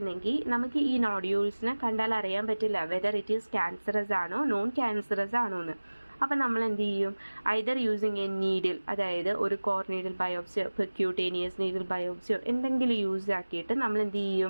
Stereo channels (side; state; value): both; inverted; correlation -1.00